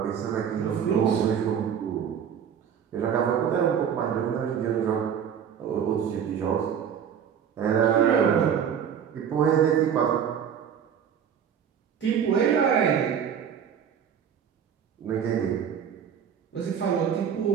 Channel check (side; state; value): left; quieter; 8.2 dB